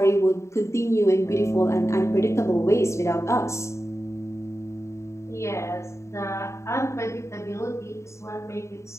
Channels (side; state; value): right; late; 0.14 ms